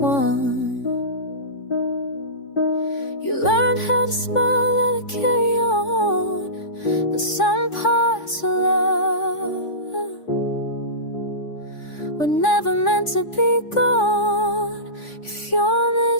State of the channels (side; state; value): right; late; 3.5 ms